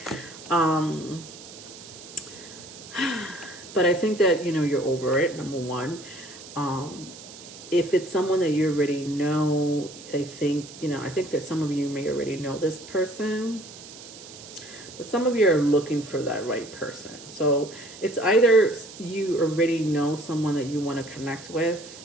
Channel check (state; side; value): noise; right; hiss, 16 dB below the sound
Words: But I think that, you're over it, number one. If it's someone that you already know, I think that some of you may already know this person. But some of you are looking for that right person. So it's either you already know someone that you want to connect with,